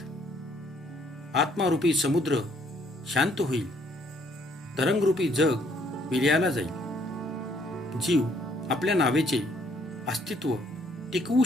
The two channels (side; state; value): both; normal; correlation 0.65